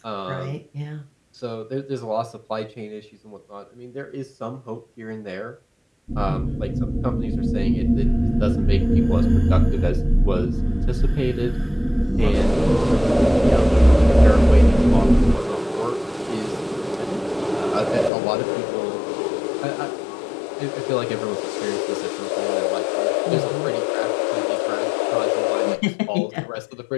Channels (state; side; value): drops out; right; at 18.1 s